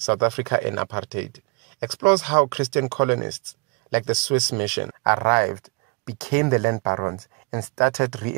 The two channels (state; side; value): quieter; left; 29.2 dB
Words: Africa and Apartheid, explores how Christian colonists, like the Swiss mission, arrived, became the land barons, and started